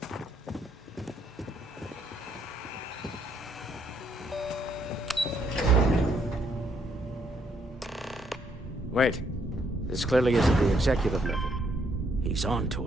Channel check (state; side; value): normal; both; correlation 0.71